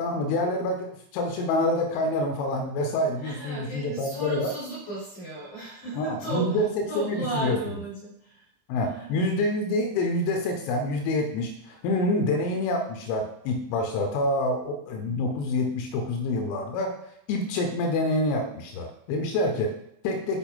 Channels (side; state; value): right; late; 28 ms